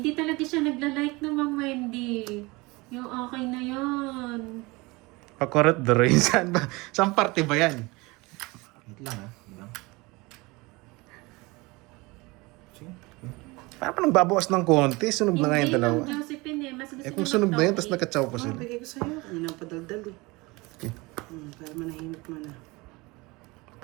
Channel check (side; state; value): left; quieter; 23.8 dB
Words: talaga siya nagla-like ng Ma'am Wendy. Yung okay na yun. Pakurot Droy. Saan ba? Saan parte ba yan? Wait lang ha. Ilang. Sige. Parang pa nagbabawas ng konti. Sunog na nga yung dalawa. Ma'am Josephine eh. Mas gusto Eh kung niya sunog na yun, mag-topic. tapos nagkatsaw pa sila. Bigay ko sa'yo. Kanina pa daldal eh. Okay. Para manahimik mo na.